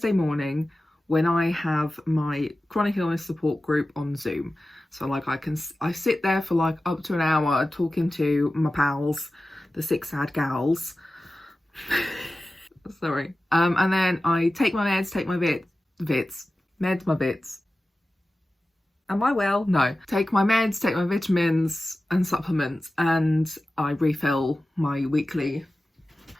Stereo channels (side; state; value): both; normal; correlation 0.95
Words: morning when I have my chronic illness support group on Zoom. So I sit there for up to an hour talking to my pals, the six sad gals. Sorry. And then I take my meds, take my meds, my bits. Am I well? No. Take my meds, take my vitamins and supplements, and I refill my weekly.